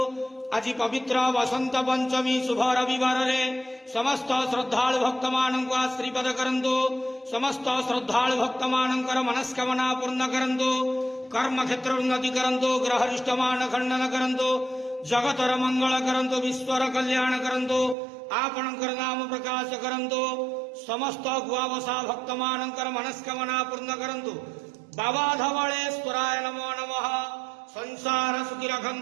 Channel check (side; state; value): left; drops out; at 17.9 s